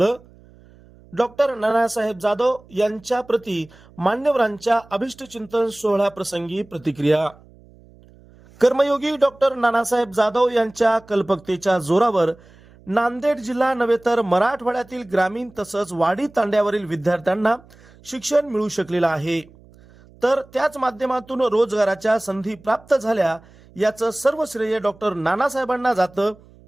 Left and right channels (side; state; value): right; noise; hum, 26 dB below the sound